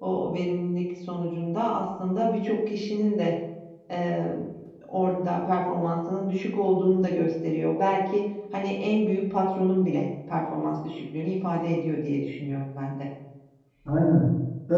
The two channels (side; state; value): both; identical; correlation 1.00